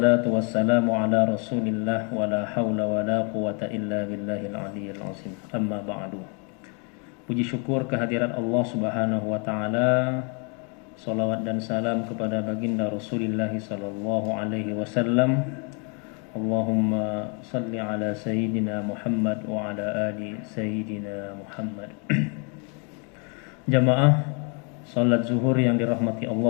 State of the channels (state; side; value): quieter; right; 36.0 dB